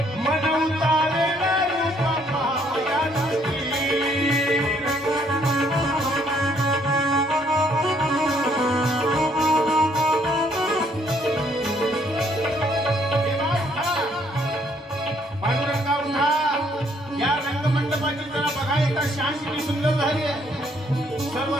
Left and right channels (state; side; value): normal; both; correlation 0.67